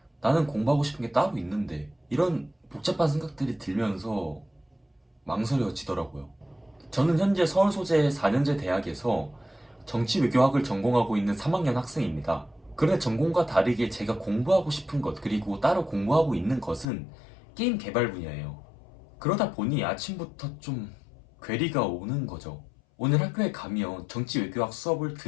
나는 공부하고 싶은 게 따로 있는데 이런 복잡한 생각들이 들면서 망설여지더라고요. 저는 현재 서울 소재 4년제 대학에서 정치외교학을 전공하고 있는 3학년 학생입니다. 그런데 전공과 다르게 제가 공부하고 싶은 것, 그리고 따로 공부하고 있는 것은 게임 개발 분야예요. 그러다 보니 아침부터 좀 괴리가 오는 거죠. 오늘 학교에 가면 정치외교학 수업을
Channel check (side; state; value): right; drops out; at 16.9 s